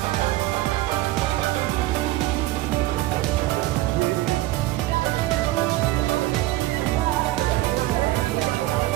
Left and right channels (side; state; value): left; quieter; 17.1 dB